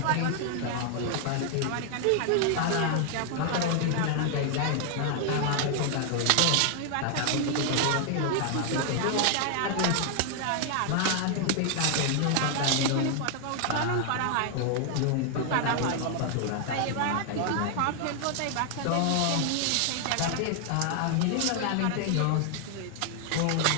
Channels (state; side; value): different; both; correlation 0.00